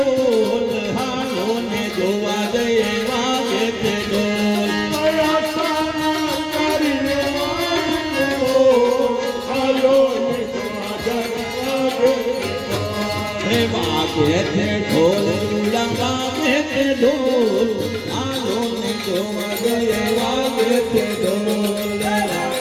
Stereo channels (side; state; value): both; identical; correlation 1.00